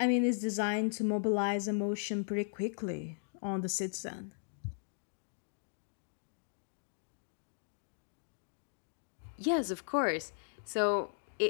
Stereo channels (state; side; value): silent; right; digital silence